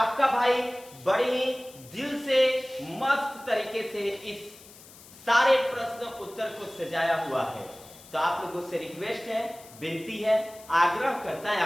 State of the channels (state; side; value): noise; left; hiss, 21 dB below the sound